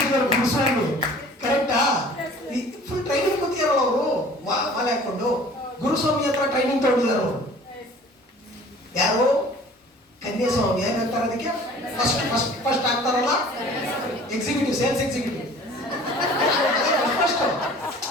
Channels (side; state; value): both; normal; correlation 0.48